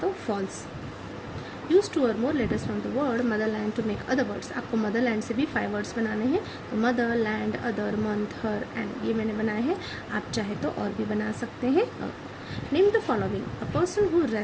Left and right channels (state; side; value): identical; both; correlation 1.00